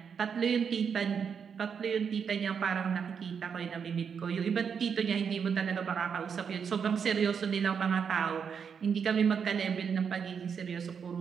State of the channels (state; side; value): quieter; left; 6.8 dB